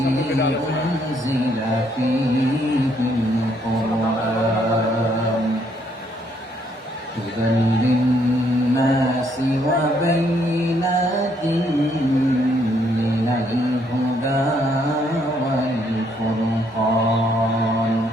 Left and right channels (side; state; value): both; normal; correlation 0.70